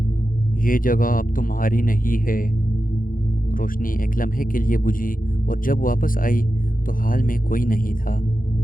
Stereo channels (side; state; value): right; late; 0.40 ms